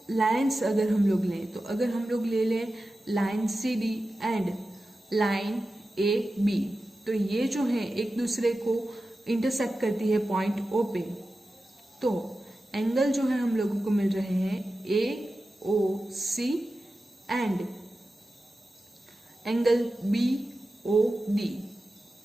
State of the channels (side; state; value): both; normal; correlation 0.93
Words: लाइन्स अगर हम लोग लें, तो अगर हम लोग ले लें line CD and line AB, तो ये जो है एक दूसरे को इंटरसेक्ट करती है पॉइंट O पे। तो एंगल जो है हम लोगों को मिल रहे हैं AOC एंड एंगल BOD।